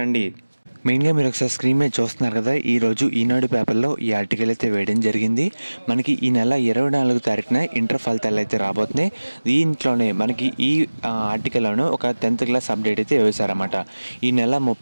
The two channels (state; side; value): inverted; both; correlation -1.00